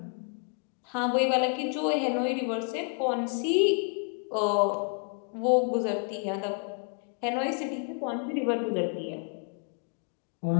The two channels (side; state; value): right; quieter; 39.9 dB